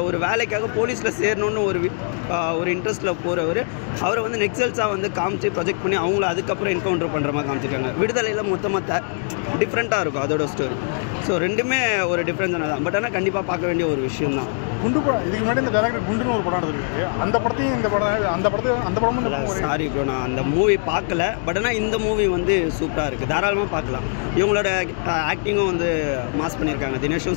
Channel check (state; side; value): silent; right; 60 dB below the other